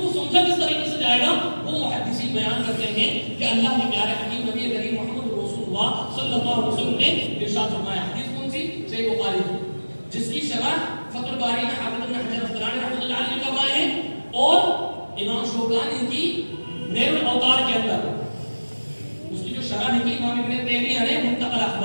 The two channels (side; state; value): both; inverted; correlation -1.00